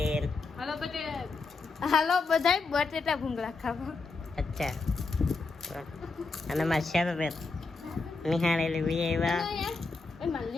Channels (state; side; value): quieter; right; 4.0 dB